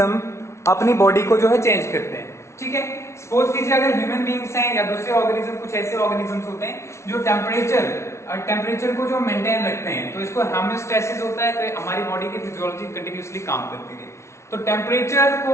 अपनी बॉडी को जो है चेंज करते हैं, ठीक है। सपोज कीजिए अगर ह्यूमन बींग्स हैं या दूसरे ऑर्गेनिज्म, कुछ ऐसे ऑर्गेनिजम्स होते हैं जो टेम्परेचर को जो मेंटेन रखते हैं, तो इसको होम्योस्टैसिस होता है, तो हमारी बॉडी की फिजियोलॉजी कंटिन्यूअसली काम करती है। तो टेम्परेचर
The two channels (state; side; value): late; right; 0.13 ms